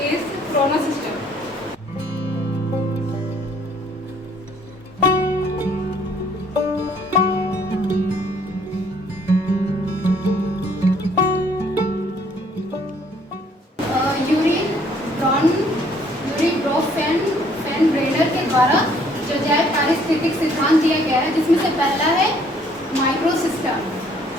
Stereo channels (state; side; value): normal; both; correlation 0.62